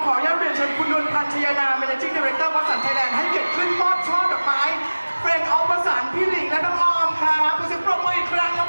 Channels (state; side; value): inverted; both; correlation -1.00